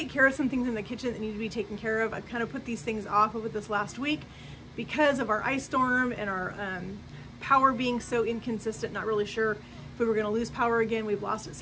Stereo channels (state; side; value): identical; both; correlation 1.00